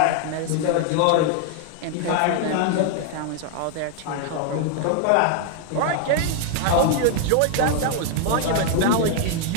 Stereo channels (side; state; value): both; different; correlation 0.00